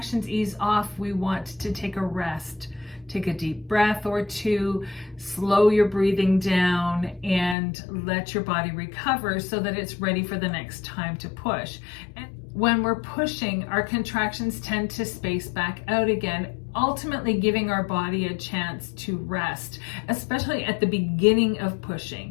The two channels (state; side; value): drops out; right; at 7.6 s